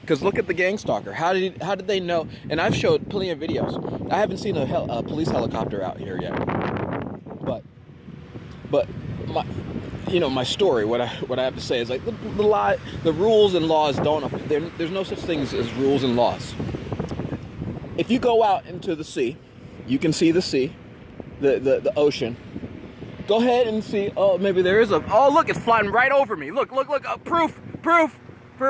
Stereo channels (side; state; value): both; identical; correlation 1.00